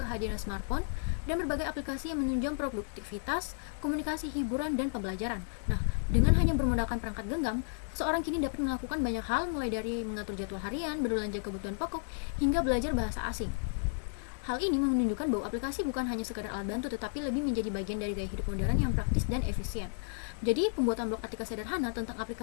smartphone dan berbagai aplikasi yang menunjang produktivitas, komunikasi, hiburan, dan pembelajaran. Nah, dengan hanya bermodalkan perangkat genggam, seseorang kini dapat melakukan banyak hal, mulai dari mengatur jadwal harian, berbelanja kebutuhan pokok, hingga belajar bahasa asing. Hal ini menunjukkan bahwa aplikasi bukan hanya sekadar alat bantu, tetapi lebih menjadi bagian dari gaya hidup modern yang praktis dan efisien. Jadi, pembuatan blog artikel sederhana tentang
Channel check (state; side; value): silent; right; 56 dB below the other